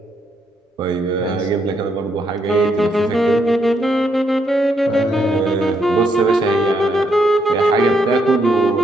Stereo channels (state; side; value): normal; both; correlation 0.76